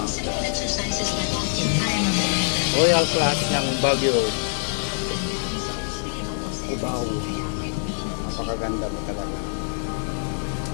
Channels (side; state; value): right; silent; 62 dB below the other